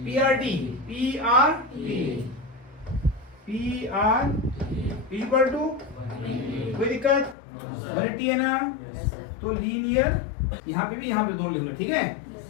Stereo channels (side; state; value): right; drops out; at 7.4 s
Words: P R T equal to, कोई दिक्कत? 180 है ना, तो लीनियर, यहाँ पे भी यहाँ पे दोनों लिखना, ठीक है।